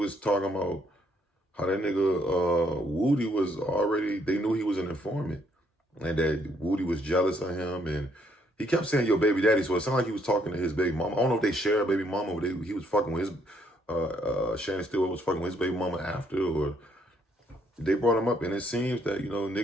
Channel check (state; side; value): normal; both; correlation 0.70